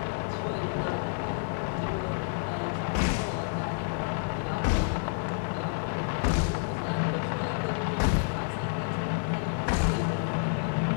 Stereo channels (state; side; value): silent; right; digital silence